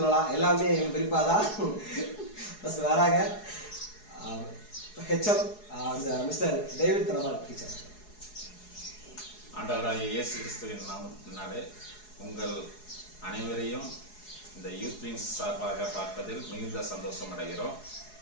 எல்லாமே எங்கள் பெரியப்பா தான் ஃபஸ்ட் வராங்க. ஹெச்எம் அந்த மிஸ்டர் டேவிட் தனபால் டீச்சர். ஆண்டவராகிய இயேசு கிறிஸ்துவின் நாமத்தினாலே உங்கள் அனைவரையும் இந்த யூத் விங்ஸ் சார்பாக பார்ப்பதில் மிகுந்த சந்தோஷம் அடைகிறோம்.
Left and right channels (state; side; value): late; right; 4.8 ms